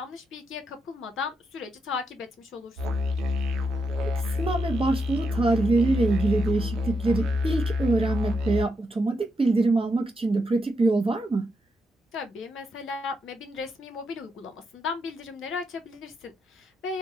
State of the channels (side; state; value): both; normal; correlation 0.82